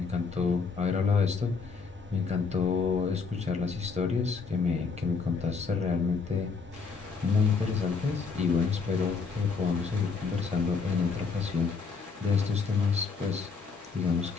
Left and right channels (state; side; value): quieter; right; 5.0 dB